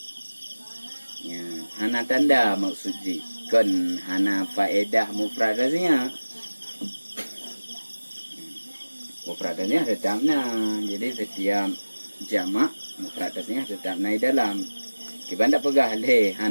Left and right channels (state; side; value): inverted; both; correlation -1.00